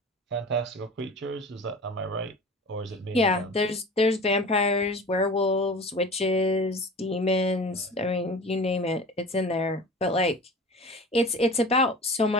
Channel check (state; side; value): normal; both; correlation 0.38